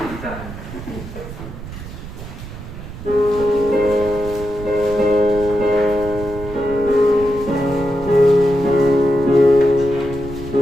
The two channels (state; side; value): noise; right; rumble, 12 dB below the sound